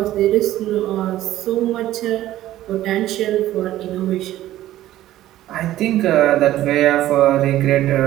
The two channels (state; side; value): quieter; left; 14.1 dB